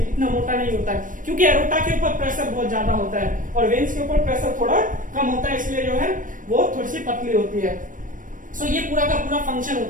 मोटा नहीं होता है, क्योंकि एरोटा के ऊपर प्रेशर बहुत ज्यादा होता है और वेन्स के ऊपर प्रेशर थोड़ा कम होता है, इसलिए जो है वो थोड़ी सी पतली होती है। सो ये पूरा का पूरा फंक्शन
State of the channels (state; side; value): late; left; 0.38 ms